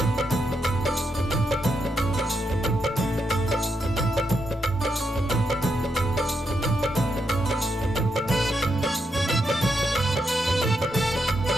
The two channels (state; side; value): normal; both; correlation 0.82